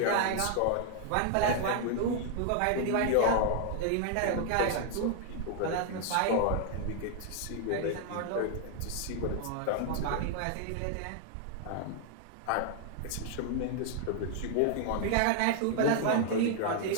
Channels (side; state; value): both; different; correlation 0.00